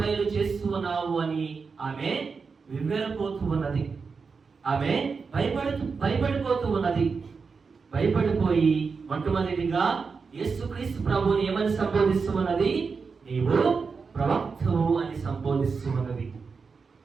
చేస్తూ ఉన్నావు అని ఆమె వివరపోతూ ఉన్నది. ఆమె భయపడిపోతూ ఉన్నది. భయపడిపోయి మొట్టమొదటిగా యేసుక్రీస్తు ప్రభువుని ఏమని సంబోధిస్తూ ఉన్నది? నీవు ప్రవక్తవు అని సంబోధిస్తూ ఉన్నది.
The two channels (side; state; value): left; quieter; 5.1 dB